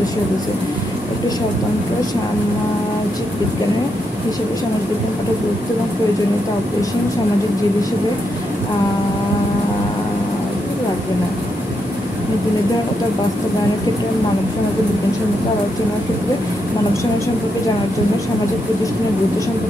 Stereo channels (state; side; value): normal; both; correlation 0.81